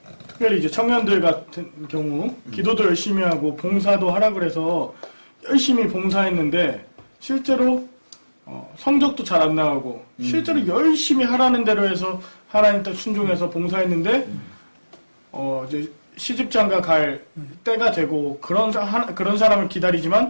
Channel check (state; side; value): inverted; both; correlation -1.00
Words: 특별히 이제 청년들 같은 경우 기도도 열심히 하고 봉사도 하라 그래서 열심히 봉사했는데 실제로 성적도 잘 안 나오고 실제로 열심히 하라는 대로 해서 하나님 뜻 순종해서 봉사했는데 이제 시집장가 갈 때가 되고 그런 사람을